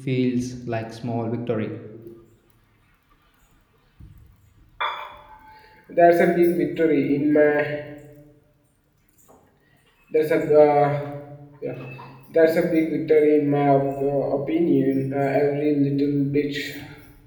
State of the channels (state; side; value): identical; both; correlation 1.00